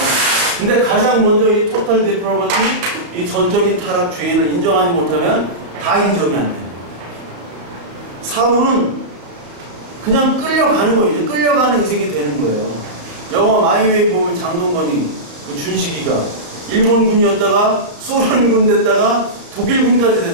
근데 가장 먼저 이 total depravity, 이 전적인 타락 죄인을 인정하지 못하면 다 인정이 안 돼요. 사울은 그냥 끌려가는 거예요. 이제 끌려가는 인생이 되는 거예요. 영화 마이웨이 보면 장동건이 그 준식이가 일본군이었다가 소련군 됐다가 독일군까지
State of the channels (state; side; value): late; left; 34 ms